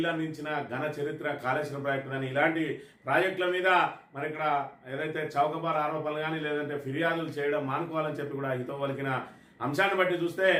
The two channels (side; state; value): both; identical; correlation 1.00